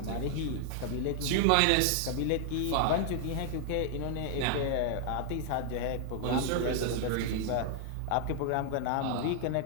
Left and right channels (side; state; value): both; different; correlation 0.00